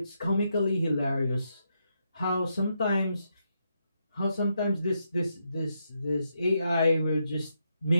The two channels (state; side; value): inverted; both; correlation -0.81